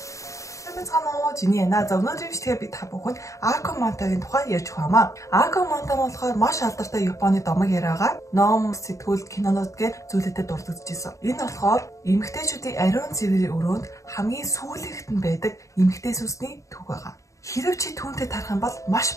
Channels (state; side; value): late; right; 0.15 ms